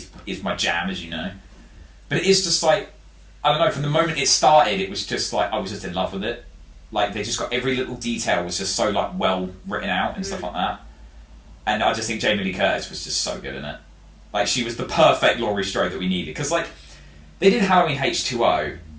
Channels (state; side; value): identical; both; correlation 1.00